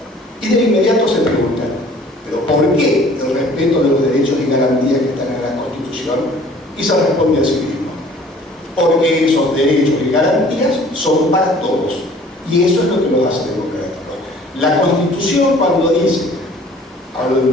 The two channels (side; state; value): both; normal; correlation 0.52